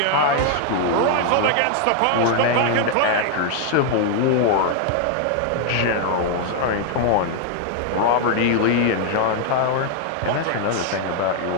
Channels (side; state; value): both; different; correlation 0.00